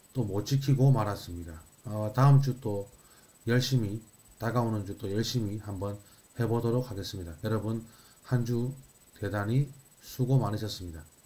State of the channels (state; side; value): identical; both; correlation 1.00